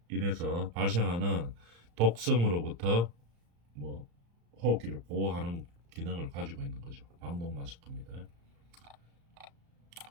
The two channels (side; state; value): left; late; 35 ms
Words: 인해서 발생하는 독성으로부터 뭐 호흡기를 보호하는 기능을 가지고 있는 거죠. 방독 마스크입니다.